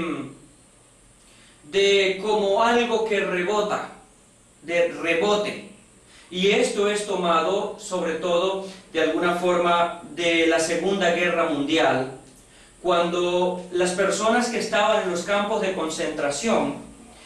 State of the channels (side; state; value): both; identical; correlation 1.00